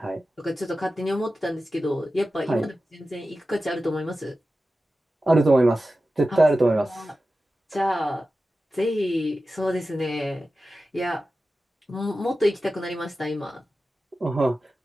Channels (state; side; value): normal; both; correlation 0.94